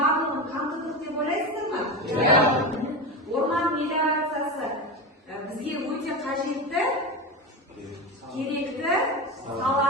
қамтыдық деп ойлайсыздар ма? Орман мелиорациясы бізге өте қажетті, керекті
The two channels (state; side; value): normal; both; correlation 0.22